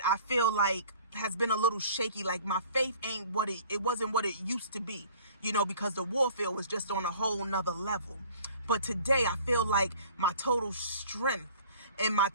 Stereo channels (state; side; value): inverted; both; correlation -0.49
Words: I feel like has been a little shaky, like my faith ain't it wasn't what it used to be, because the warfare was just on a whole nother level. But today I feel like my total strength and my